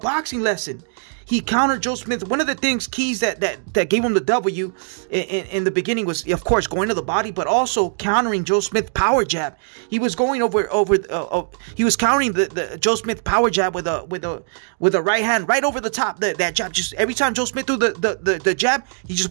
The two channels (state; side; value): silent; left; digital silence